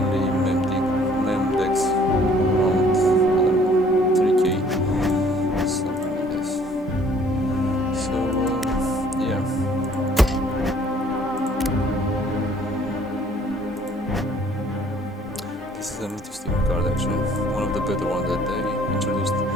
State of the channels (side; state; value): both; normal; correlation 0.58